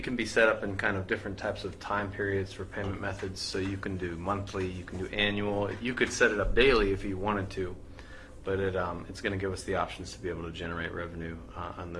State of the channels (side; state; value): both; identical; correlation 1.00